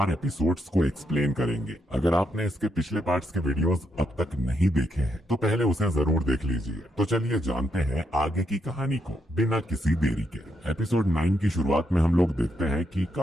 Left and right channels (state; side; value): normal; both; correlation 0.79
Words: एपिसोड्स को एक्सप्लेन करेंगे। अगर आपने इसके पिछले पार्ट्स के वीडियोस अब तक नहीं देखे हैं तो पहले उसे जरूर देख लीजिए। तो चलिए जानते हैं आगे की कहानी को बिना किसी देरी के। एपिसोड 9 की शुरुआत में हम लोग देखते हैं कि